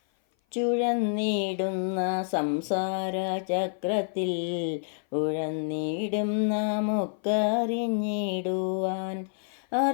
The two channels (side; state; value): right; silent; 56 dB below the other